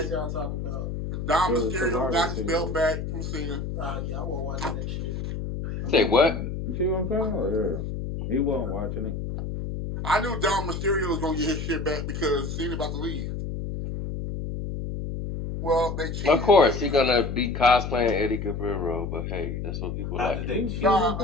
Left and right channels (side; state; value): left; noise; hum, 4 dB below the sound